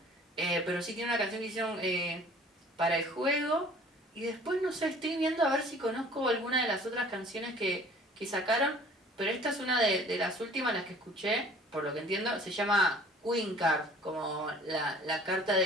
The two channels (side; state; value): both; normal; correlation 0.51